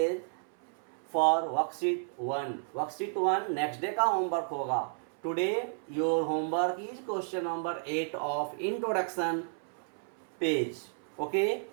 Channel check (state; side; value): silent; left; 56 dB below the other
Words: for worksheet 1। Worksheet 1 next day का homework होगा। Today your homework is question number 8 of introduction page. Okay,